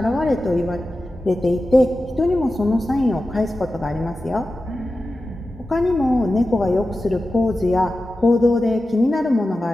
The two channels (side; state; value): both; normal; correlation 0.93